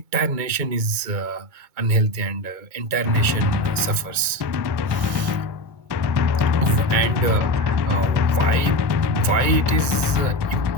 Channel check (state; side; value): late; left; 2.2 ms